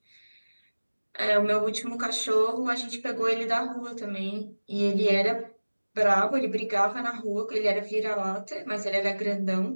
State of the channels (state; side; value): inverted; both; correlation -1.00